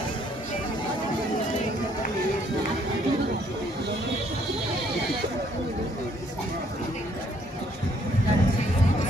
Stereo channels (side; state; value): both; normal; correlation 0.66